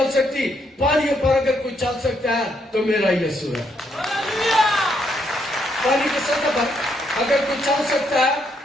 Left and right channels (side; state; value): both; normal; correlation 0.75